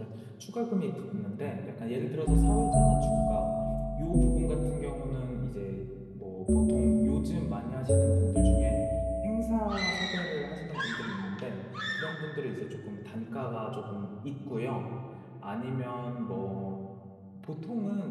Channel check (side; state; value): both; identical; correlation 1.00